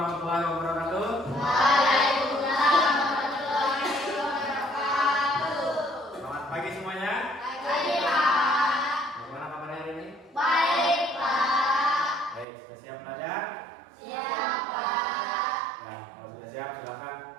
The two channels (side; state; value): left; drops out; at 12.5 s